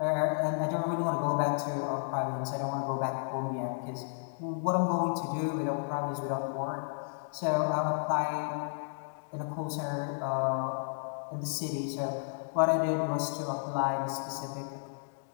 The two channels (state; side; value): silent; right; digital silence